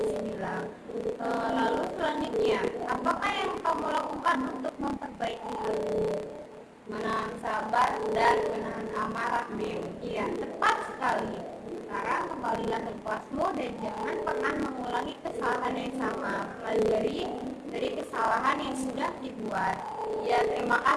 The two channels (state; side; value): identical; both; correlation 1.00